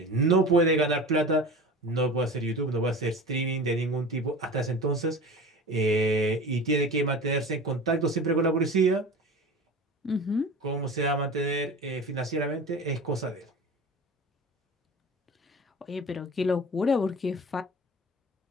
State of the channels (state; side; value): normal; both; correlation 0.35